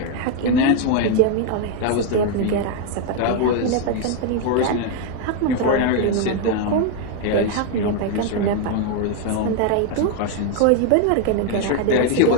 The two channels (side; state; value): both; different; correlation 0.00